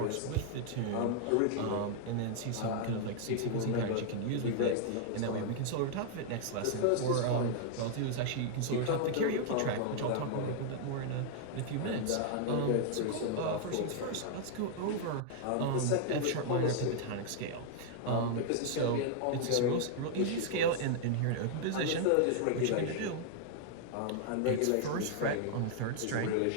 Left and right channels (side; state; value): both; different; correlation -0.01